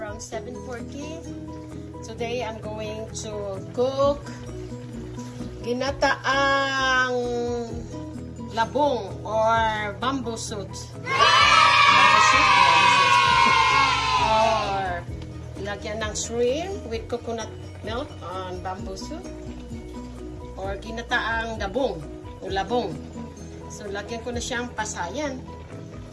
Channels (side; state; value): both; identical; correlation 1.00